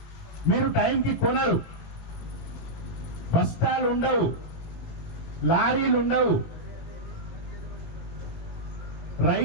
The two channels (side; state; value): right; late; 18 ms